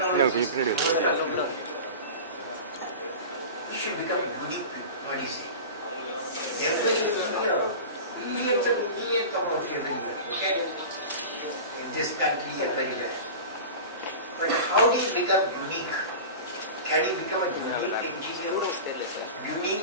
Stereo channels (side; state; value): both; inverted; correlation -0.32